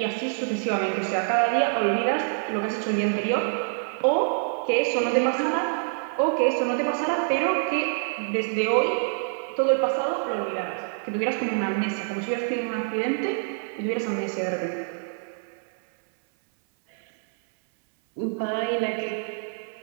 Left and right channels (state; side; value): silent; left; 60 dB below the other